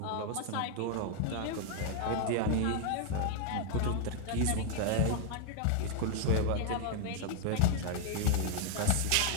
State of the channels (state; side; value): different; both; correlation 0.00